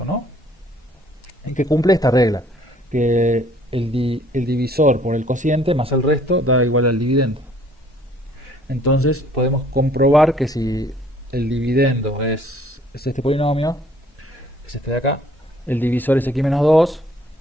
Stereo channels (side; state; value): both; normal; correlation 0.59